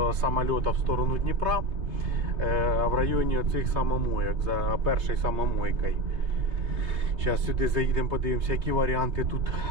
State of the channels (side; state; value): left; late; 3.4 ms